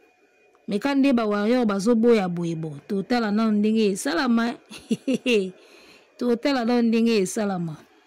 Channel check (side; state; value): both; identical; correlation 1.00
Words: mais quand des ba warrior bazo boya boyebo total na ndenge salama total na ndenge salama